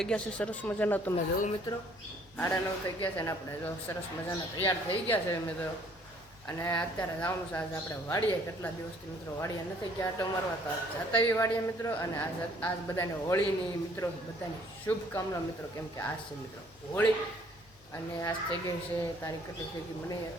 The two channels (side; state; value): both; normal; correlation 0.60